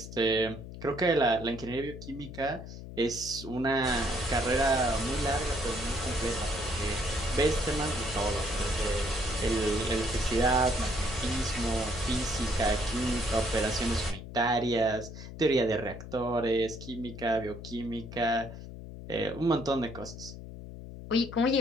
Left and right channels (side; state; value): left; noise; hum, 12 dB below the sound